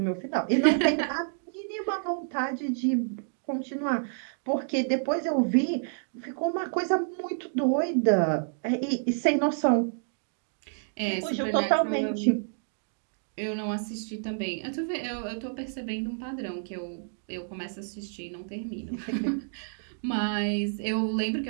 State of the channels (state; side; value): silent; left; digital silence